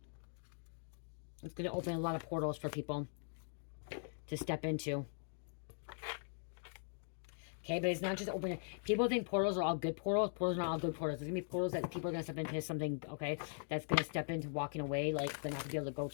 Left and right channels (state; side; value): silent; right; digital silence